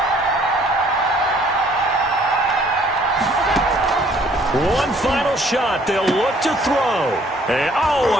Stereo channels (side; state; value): both; normal; correlation 0.60